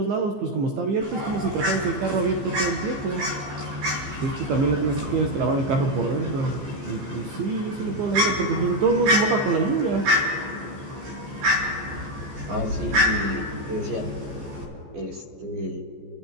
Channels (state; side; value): late; left; 15 ms